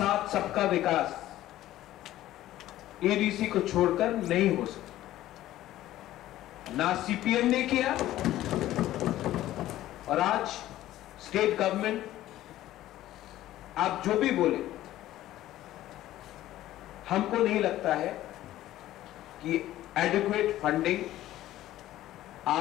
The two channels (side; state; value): right; quieter; 14.3 dB